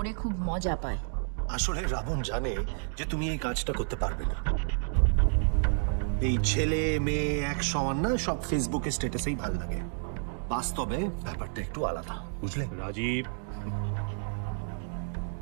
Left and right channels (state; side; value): silent; left; 58 dB below the other